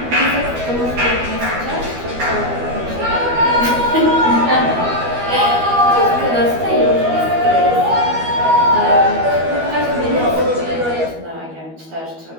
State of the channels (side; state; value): left; late; 12 ms